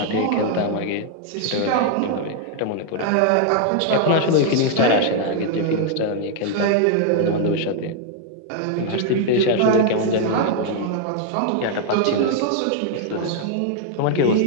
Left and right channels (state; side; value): different; both; correlation 0.00